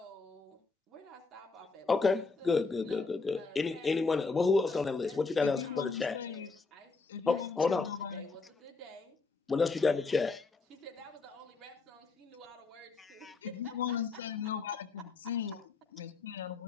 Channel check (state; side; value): quieter; right; 4.2 dB